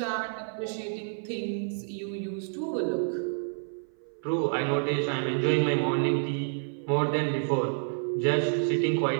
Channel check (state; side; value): silent; left; 56 dB below the other